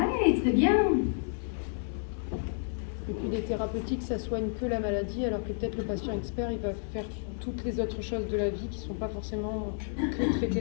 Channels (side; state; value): right; silent; digital silence